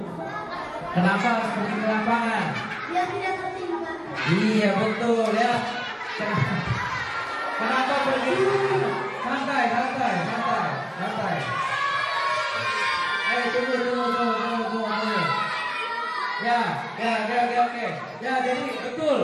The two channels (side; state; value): both; identical; correlation 1.00